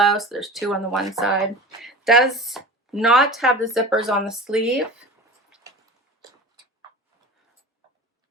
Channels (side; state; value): both; normal; correlation 0.35